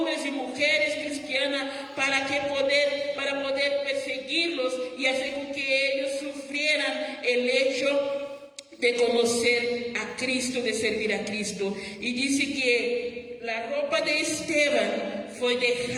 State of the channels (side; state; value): both; identical; correlation 1.00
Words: y mujeres cristianas para poder perseguirlos y hacer con que ellos sufrieran el hecho de conocer a Cristo, de servir a Cristo. Y dice que la ropa de Esteban fue